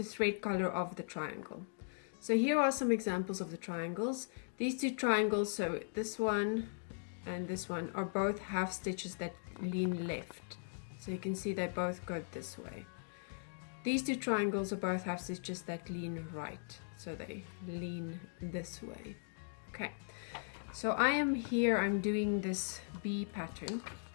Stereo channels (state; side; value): silent; right; digital silence